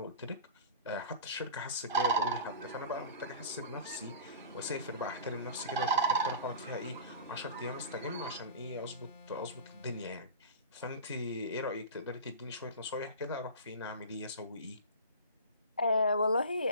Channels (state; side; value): inverted; both; correlation -0.34